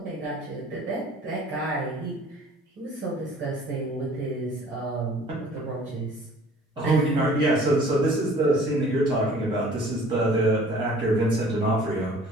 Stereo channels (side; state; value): both; normal; correlation 0.51